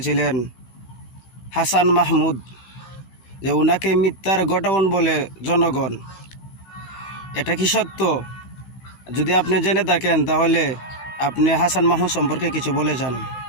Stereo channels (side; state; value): right; late; 15 ms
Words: ছিলেন হাসান মাহমুদ, যে উনাকে মিথ্যার গোডাউন বলে জনগণ। এটা কি সত্য? যদি আপনি জেনে থাকেন তাহলে আপনি হাসান মাহমুদ সম্পর্কে কিছু বলে যান।